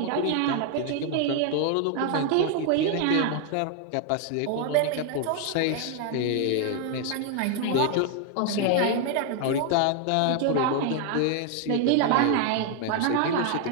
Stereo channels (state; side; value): different; both; correlation 0.00